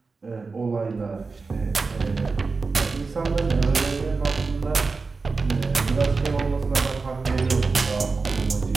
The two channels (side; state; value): left; quieter; 4.2 dB